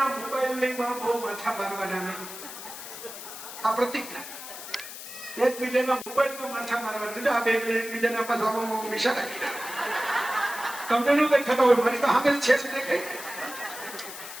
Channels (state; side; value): noise; left; hiss, 11 dB below the sound